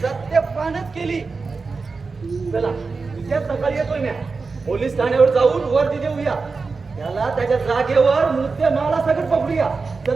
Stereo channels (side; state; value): left; quieter; 4.4 dB